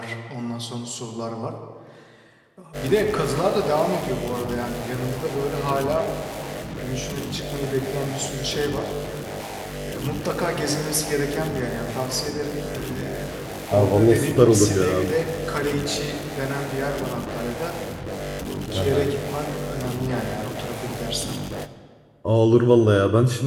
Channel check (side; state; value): both; identical; correlation 1.00